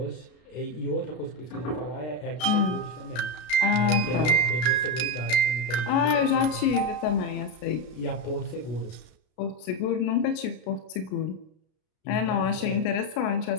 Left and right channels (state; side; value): late; right; 33 ms